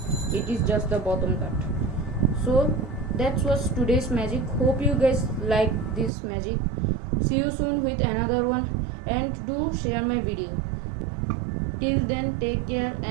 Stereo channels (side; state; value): left; drops out; at 6.1 s